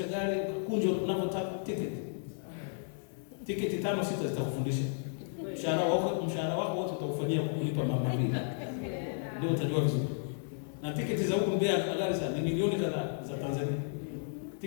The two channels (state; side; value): silent; right; 56 dB below the other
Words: gari, kunjo unavyotaka tiketi 5-6 zitakufundisha. Mshahara wako wote utakufanyia kulipa mama mbili. Ndio utajua vizuri. Na tiketi za huko Mbeya gari sana ni milioni kadhaa za Tanzania.